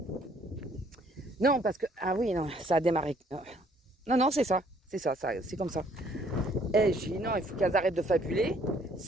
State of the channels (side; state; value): both; normal; correlation 0.62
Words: non parce que ah oui non ça a démarré non c'est ça c'est comme ça. Et j'ai dit non, il faut qu'elles arrêtent de fabuler,